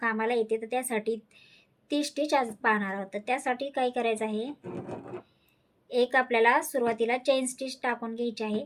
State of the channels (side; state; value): both; identical; correlation 1.00